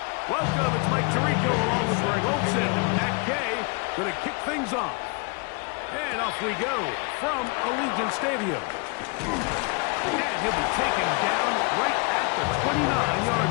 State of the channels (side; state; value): right; quieter; 31.8 dB